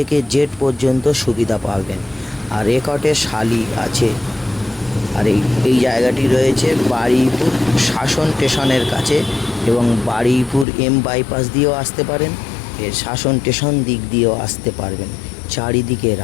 জেড পর্যন্ত সুবিধা পাবেন। আর রেকর্ডে শালি আছে। আর এই জায়গাটি রয়েছে বারুইপুর শাসন স্টেশনের কাছে, এবং বারুইপুর এম বাইপাস দিয়েও আসতে পারেন, এর শাসন স্টেশন দিক দিয়েও আসতে পারবেন, চারিদিকে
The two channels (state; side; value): drops out; right; at 10.7 s